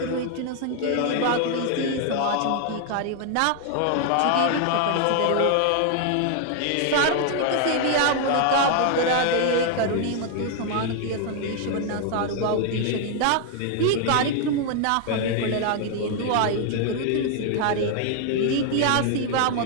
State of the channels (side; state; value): both; different; correlation 0.00